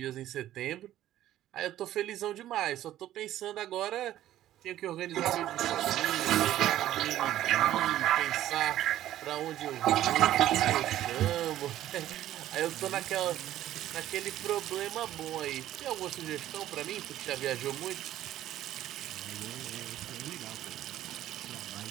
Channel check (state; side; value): quieter; left; 13.1 dB